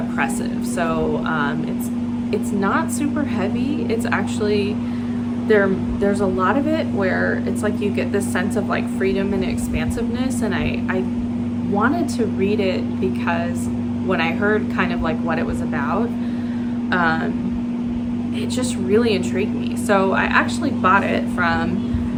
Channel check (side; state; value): both; identical; correlation 1.00